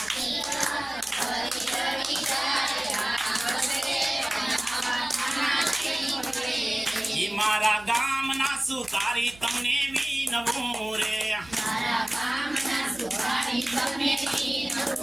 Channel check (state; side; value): noise; right; hum, 22 dB below the sound